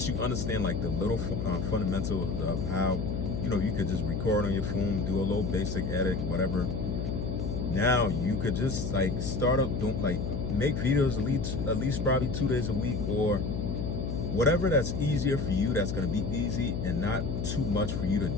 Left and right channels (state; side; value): noise; left; hum, 3 dB below the sound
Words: you understand like the little fundamentals of how, you could just record on your phone, do a little basic edit, whatever. Now you could just start up, make videos at least probably 2 days a week, or whatever that's easier for you, that's going to be easy and not too much for you to